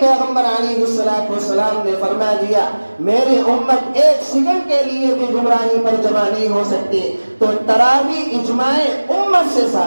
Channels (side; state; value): both; inverted; correlation -1.00